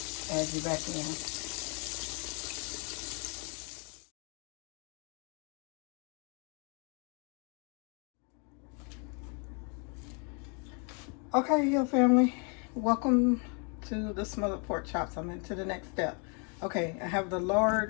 add you back in. Okay, here, family. Welcome to the smothered pork chops. I'm into the next step. Okay, I have the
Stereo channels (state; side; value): quieter; right; 36.3 dB